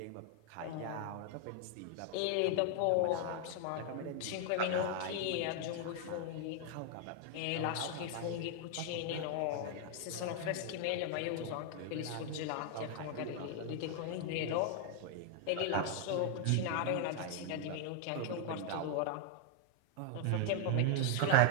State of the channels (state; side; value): different; both; correlation 0.00